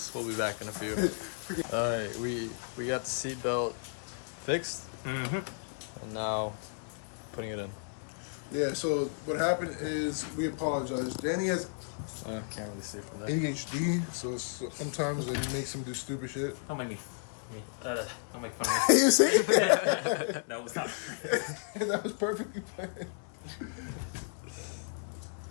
We'll be back in a few. All right, we got the seat belt fixed, Mm-hmm. and now putting it in. Yeah. So what happened is we apologize. Danny has I can't really see from there. ADHD, so sometimes it makes him do stupid shit. Don't make don't make fun of me. You see? No, it's not. That was perfectly fine.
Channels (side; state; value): right; silent; digital silence